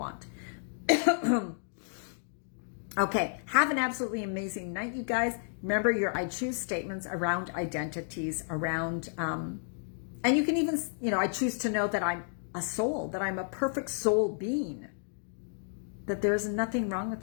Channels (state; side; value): silent; right; digital silence